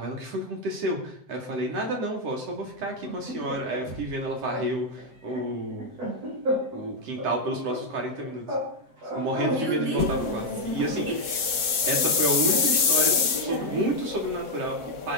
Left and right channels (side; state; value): left; late; 7.8 ms